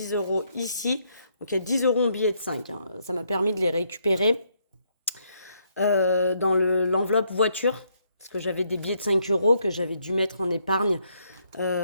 euros ici. Donc il y a 10 euros en billets de 5. Hein. Ça m'a permis de les récupérer dans l'enveloppe voiture. Parce que j'avais des billets de 5 euros que j'avais dû mettre en épargne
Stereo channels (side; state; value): both; inverted; correlation -0.73